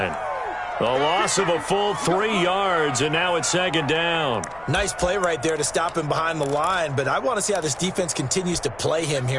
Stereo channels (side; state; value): left; noise; rumble, 24 dB below the sound